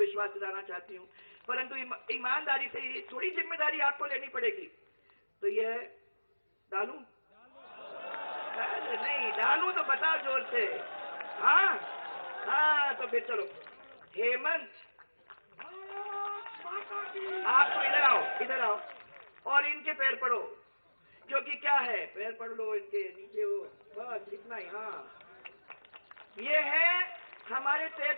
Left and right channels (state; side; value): inverted; both; correlation -1.00